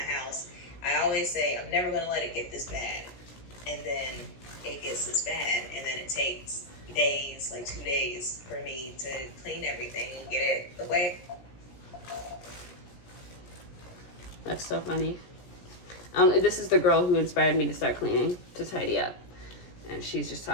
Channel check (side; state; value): right; late; 17 ms